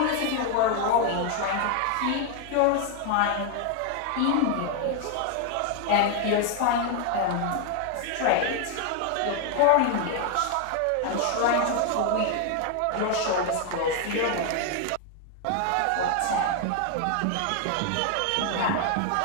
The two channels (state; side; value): different; both; correlation 0.01